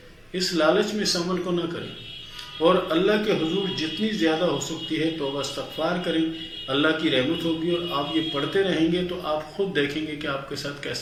اس لالچ میں اس عمل کو نہ کریں، اور اللہ کے حضور جتنی زیادہ ہو سکتی ہے توبہ استغفار کریں، اللہ کی رحمت ہوگی، اور آپ یہ پڑھتے رہیں گے تو آپ خود دیکھیں گے کہ آپ کے ساتھ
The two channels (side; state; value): both; identical; correlation 1.00